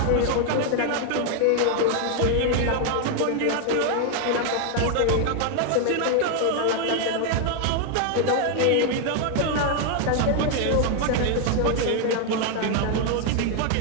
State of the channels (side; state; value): both; different; correlation 0.01